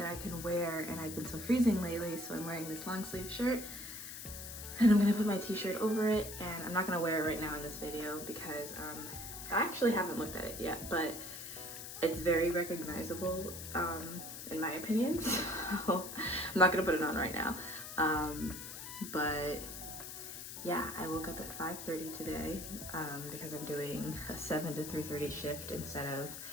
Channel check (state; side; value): noise; left; hiss, 9 dB below the sound